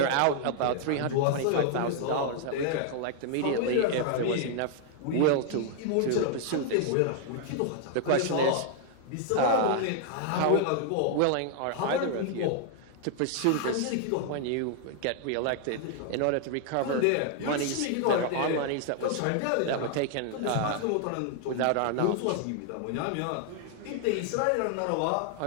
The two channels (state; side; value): different; both; correlation 0.00